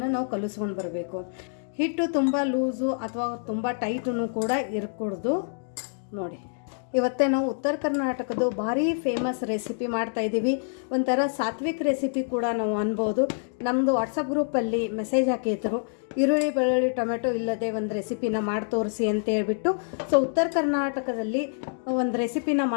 ನಾವು ಕಲಿಸ್ಕೊಂಡು ಬರಬೇಕು. ಹಿಟ್ಟು ತುಂಬ ಲೂಸು ಅಥವಾ ತುಂಬ ಟೈಟೂ ಕೂಡ ಇರಕೂಡ್ದು. ನೋಡಿ ಇವತ್ತೇ ನಾವು ಉತ್ತರ ಕರ್ನಾಟಕದ ಭಾರಿ ಫೇಮಸ್ ರೆಸಿಪಿ ಮಾಡ್ತಾಯಿದ್ದೀವಿ. ಒಂಥರ ಸಾತ್ವಿಕ್ ರೆಸಿಪಿ ಕೂಡ ನಾವು ಅನ್ಬೋದು. ನಮ್ಮದು ವಾಟ್ಸಪ್ ಗ್ರೂಪಲ್ಲಿ ಮೆಸೇಜ್ ಹಾಕಿದ್ರು, ಈರುಳ್ಳಿ ಬೆಳ್ಳುಳ್ಳಿ ಟೊಮೆಟೊ ಇಲ್ಲದೆ ಒಂದು ರೆಸಿಪಿನ ಮಾಡಿ ತೋರಿಸಿ ಅಂತ ಹೇಳ್ಬಿಟ್ಟು. ಸೊ ಉತ್ತರ ಕರ್ನಾಟಕದಲ್ಲಿ ಒಂದು ರೆಸಿಪಿನ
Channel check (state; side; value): silent; right; digital silence